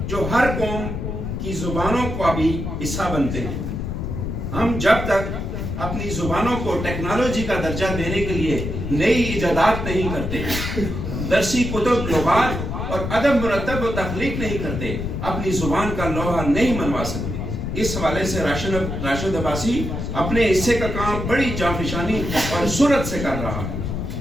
جو ہر قوم کی زبانوں کا بھی حصہ بنتے ہیں۔ ہم جب تک اپنی زبانوں کو ٹیکنالوجی کا درجہ دینے کے لیے نئی ایجادات نہیں کرتے، درسی کتب، لغات اور ادب مرتب و تخلیق نہیں کرتے، اپنی زبان کا لوہا نہیں منوا سکتے۔ اس حوالے سے راشد عباسی اپنے حصے کا کام بڑی جانفشانی اور سرعت سے کر رہا ہے۔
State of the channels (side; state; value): left; noise; rumble, 4 dB below the sound